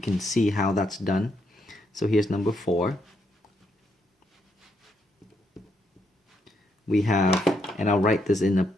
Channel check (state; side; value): normal; both; correlation 0.77